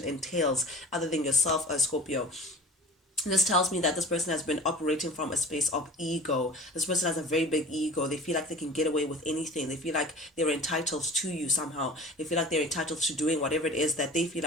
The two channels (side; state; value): both; normal; correlation 0.40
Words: entails, other than yourself, Scorpio, this tells me that this person has been operating from a space of ego. This person has a very big ego. They feel like they can get away with anything. They feel like they're entitled to you somehow. They feel like they're entitled to doing whatever it is that they feel